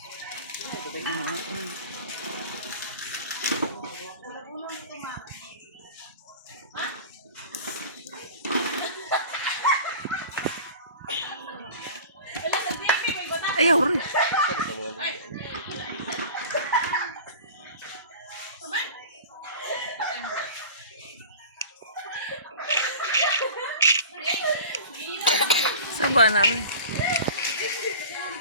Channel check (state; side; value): inverted; both; correlation -0.37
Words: Ayaw rin. Saba na rin.